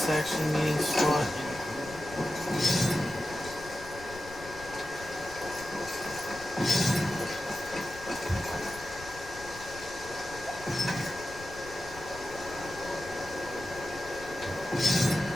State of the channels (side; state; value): left; noise; rumble, 16 dB below the sound